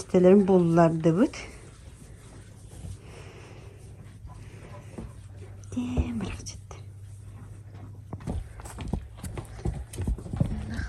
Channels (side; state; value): both; identical; correlation 1.00